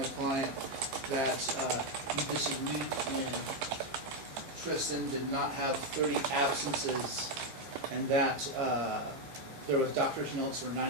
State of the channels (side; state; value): left; late; 15 ms